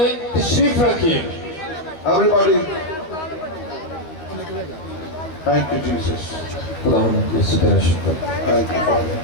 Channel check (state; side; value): late; right; 13 ms